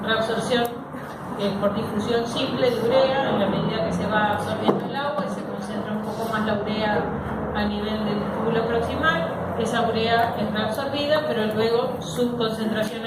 reabsorción por difusión simple de urea en la medida que se va absorbiendo el agua y se concentra un poco más la urea a nivel del túbulo proximal. Esa urea es reabsorbida, pero luego su concentración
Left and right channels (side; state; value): both; identical; correlation 1.00